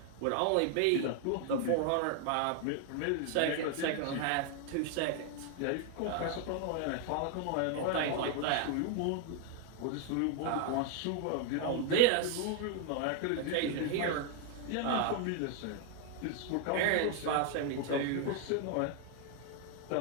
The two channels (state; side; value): different; both; correlation 0.00